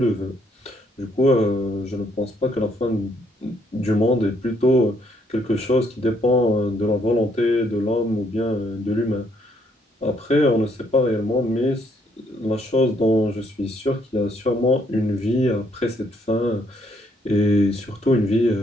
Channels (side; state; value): both; normal; correlation 0.70